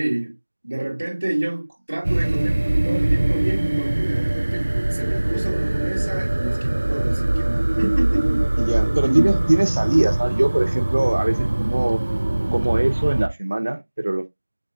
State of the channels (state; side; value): inverted; both; correlation -1.00